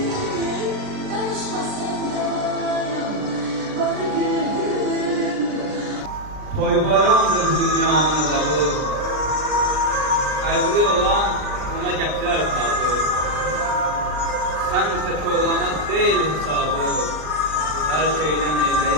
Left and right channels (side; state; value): left; late; 39 ms